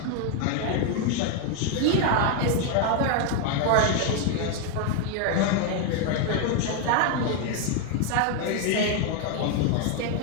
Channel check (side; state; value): both; different; correlation 0.01